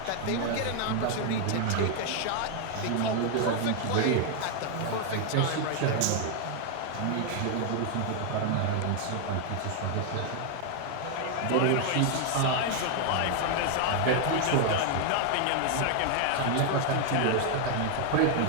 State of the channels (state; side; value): different; both; correlation 0.00